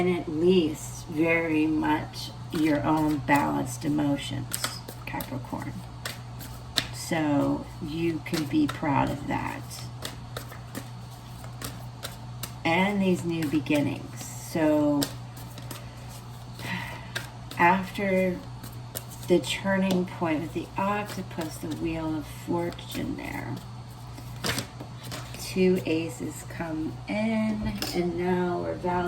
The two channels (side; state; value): both; identical; correlation 1.00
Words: at least very much your own balanced emotions, Capricorn. So you can be proud of that. And these new beginnings. So after the turning point with the octopus, the wheel of fortune there, 2 aces come in, and now we're